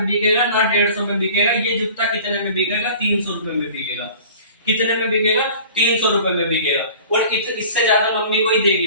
बिकेगा ना 150 में बिकेगा, ये जूता कितने में बिकेगा? 300 रुपए में बिकेगा। कितने में बिकेगा? 300 रुपए में बिकेगा। और इससे ज्यादा मम्मी कोई देगी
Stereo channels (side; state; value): both; inverted; correlation -0.44